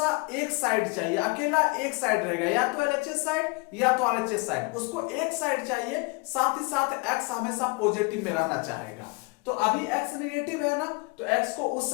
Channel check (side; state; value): right; quieter; 28.8 dB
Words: एक साइड चाहिए, अकेला एक साइड रहेगा, या तो LHS साइड या तो RHS साइड, उसको एक साइड चाहिए। साथ ही साथ x हमेशा पॉजिटिव में रहना चाहेगा। तो अभी x नेगेटिव है ना, तो x को उस